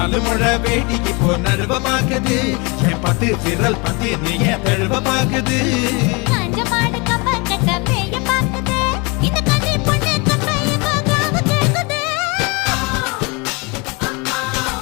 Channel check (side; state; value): right; quieter; 29.0 dB